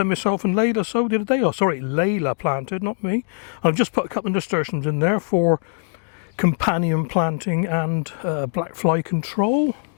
myself and Layla sowed the other day. Oh, sorry, Layla planted, not me. I've just put a couple of nasturtiums in there for companion planting and black fly control.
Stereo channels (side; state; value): right; silent; digital silence